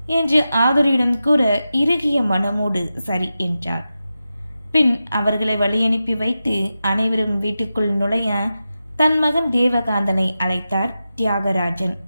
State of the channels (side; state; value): both; inverted; correlation -0.91